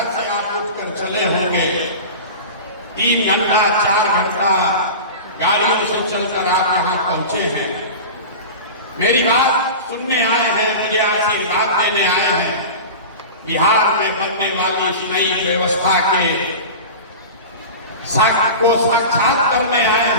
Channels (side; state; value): both; inverted; correlation -0.30